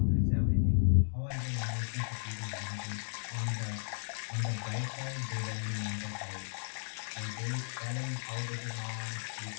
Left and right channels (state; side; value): silent; right; digital silence